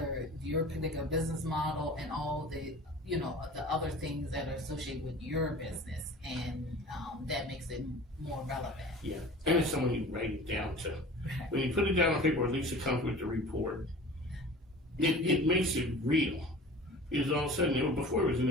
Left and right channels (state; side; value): normal; both; correlation 0.41